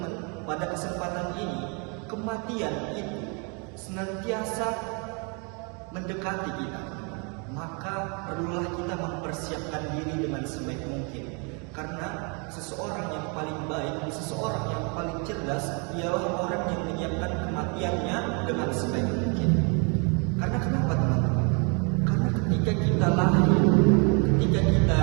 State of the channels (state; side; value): quieter; left; 34.4 dB